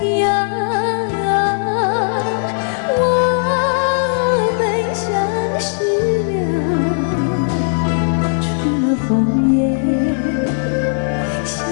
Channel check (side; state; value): right; silent; digital silence